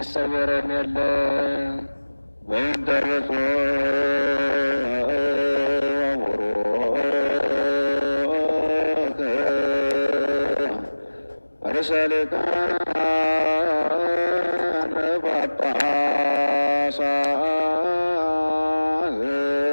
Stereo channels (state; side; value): inverted; both; correlation -1.00